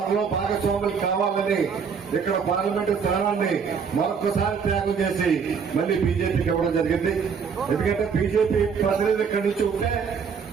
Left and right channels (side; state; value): left; quieter; 6.3 dB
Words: భాగస్వాములు కావాలని ఇక్కడ పార్లమెంటు స్థానాన్ని మరొకసారి త్యాగం చేసి మళ్ళీ బీజేపీకి ఇవ్వడం జరిగింది. ఎందుకంటే బీజేపీ ప్రతినిధులు ఇక్కడి నుంచి ఉంటే